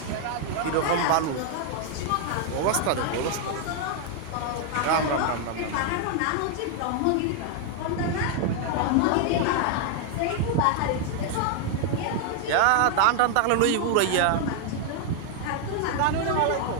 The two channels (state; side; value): different; both; correlation 0.00